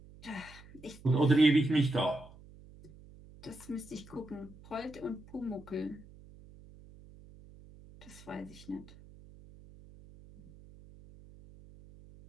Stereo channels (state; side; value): noise; right; hum, 21 dB below the sound